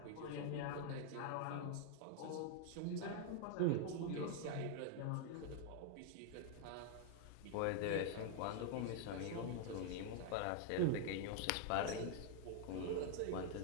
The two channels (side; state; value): both; different; correlation 0.00